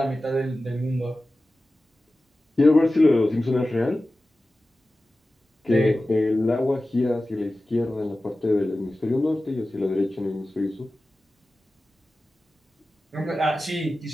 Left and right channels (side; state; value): both; normal; correlation 0.95